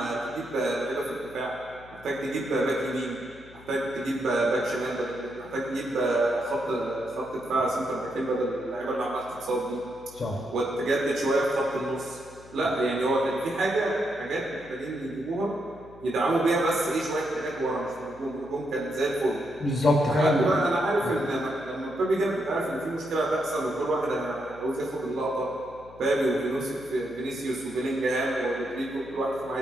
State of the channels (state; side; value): noise; left; hum, 21 dB below the sound